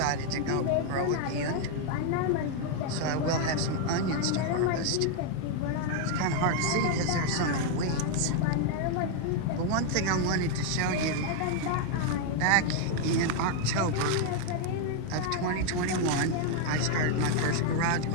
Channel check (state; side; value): different; both; correlation 0.00